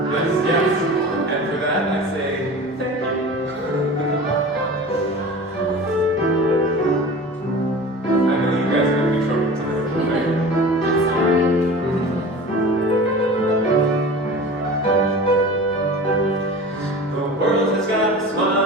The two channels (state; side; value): normal; both; correlation 0.37